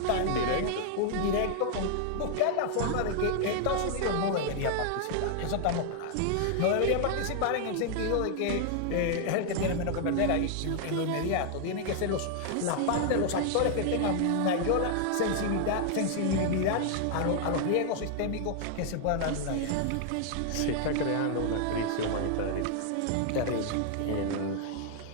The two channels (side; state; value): both; different; correlation 0.00